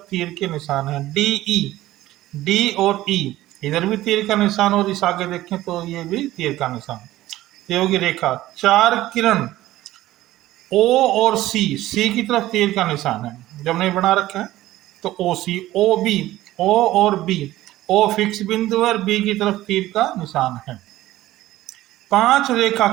तीर के निशान है। डी ई, डी और ई इधर भी तीर का निशान और इस आगे देखें तो ये भी तीर का निशान, ये होगी रेखा। 4 किरण ओ और सी, सी की तरफ तीर का निशान है, जब नहीं बना रखा है तो ओ सी, ओ बी, ओ और बी, ओ फिक्स बिंदु है और बी की तरफ तीर का निशान है। 5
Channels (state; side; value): quieter; left; 15.6 dB